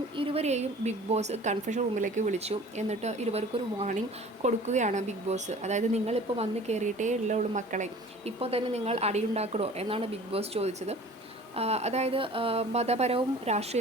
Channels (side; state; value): both; normal; correlation 0.45